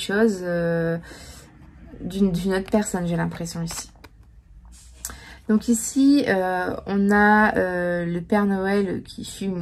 d'une autre personne, j'ai l'impression ici. Donc ici, on a le Père Noël qui fume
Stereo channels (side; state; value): both; identical; correlation 1.00